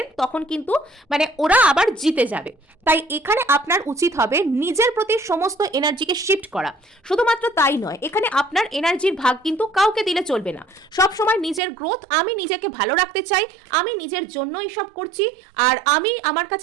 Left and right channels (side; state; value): left; drops out; at 11.6 s